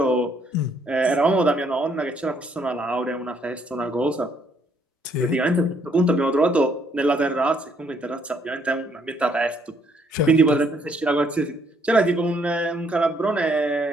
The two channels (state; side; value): normal; both; correlation 0.68